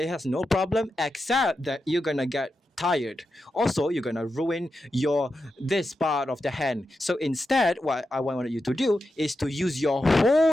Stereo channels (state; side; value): normal; both; correlation 0.89